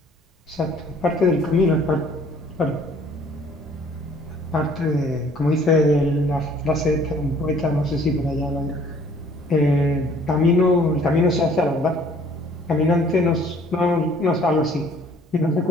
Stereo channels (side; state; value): both; normal; correlation 0.56